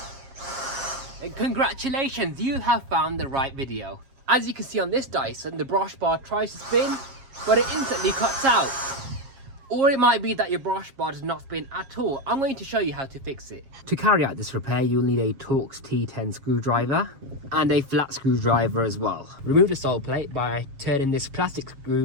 then congratulations, you have found the right video. As you can see on this Dyson, the brush bar tries to spin, but it instantly cuts out. Or it might be that your brush bar does not spin at all. I'm going to show you how to fix it. To carry out this repair, you'll need a Torx T10 screwdriver and a flat screwdriver as well. Remove the sole plate by turning this plastic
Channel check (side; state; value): left; late; 7.4 ms